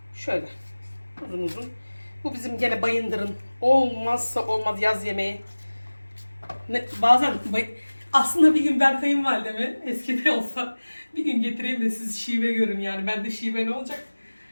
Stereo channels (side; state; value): both; inverted; correlation -1.00